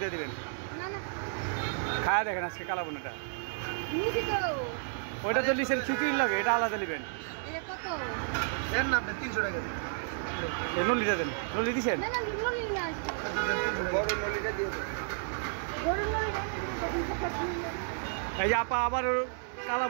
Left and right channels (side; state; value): left; silent; digital silence